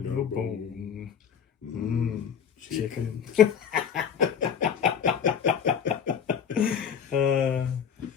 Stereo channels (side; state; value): right; quieter; 7.7 dB